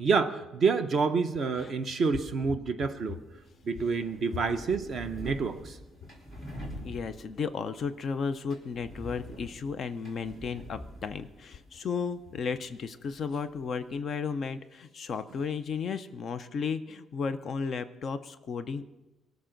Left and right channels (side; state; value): both; normal; correlation 0.71